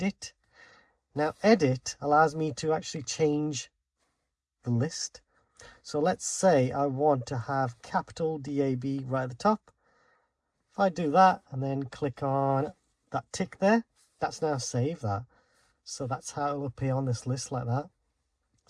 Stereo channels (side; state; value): both; identical; correlation 1.00